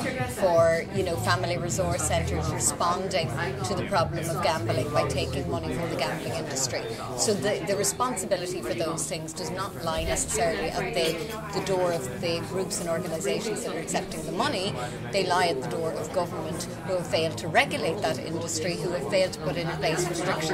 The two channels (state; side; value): identical; both; correlation 1.00